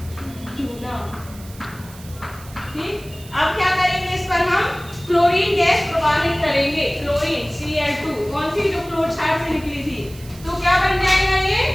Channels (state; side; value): noise; right; hiss, 20 dB below the sound